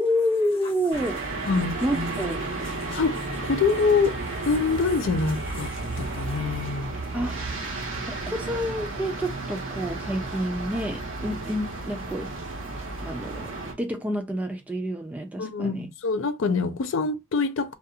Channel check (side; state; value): both; normal; correlation 0.49